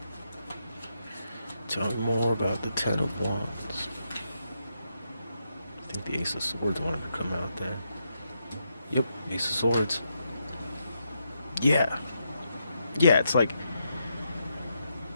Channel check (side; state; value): both; inverted; correlation -0.82